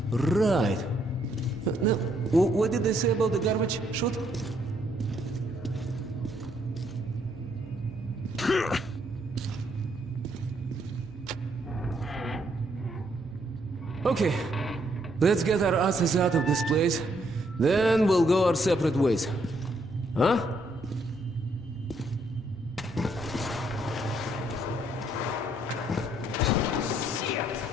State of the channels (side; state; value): both; normal; correlation 0.71